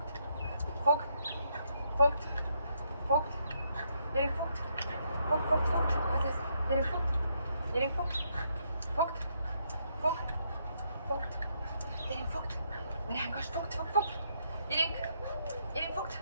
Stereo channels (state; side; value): inverted; both; correlation -0.75